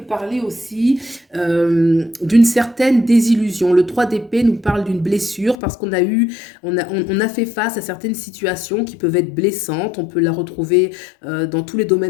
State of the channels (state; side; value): drops out; right; at 5.6 s